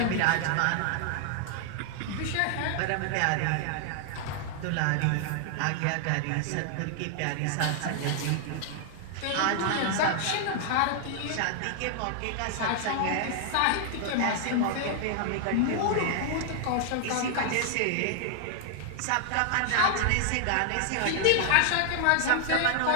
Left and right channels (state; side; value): different; both; correlation 0.00